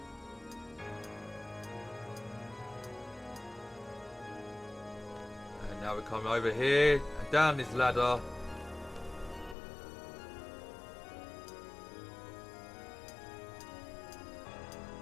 And now we come over here and down this ladder.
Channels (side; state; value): right; drops out; at 9.6 s